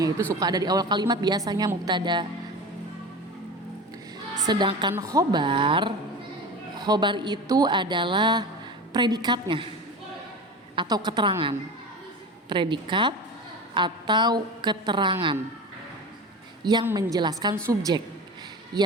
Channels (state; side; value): normal; both; correlation 0.30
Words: itu suka ada di awal kalimat biasanya mubtada. Sedangkan khobar itu adalah predikatnya atau keterangan. Predikat atau keterangan yang menjelaskan subjek